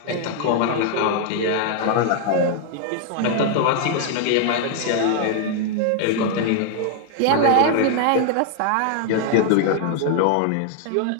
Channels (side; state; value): both; different; correlation 0.00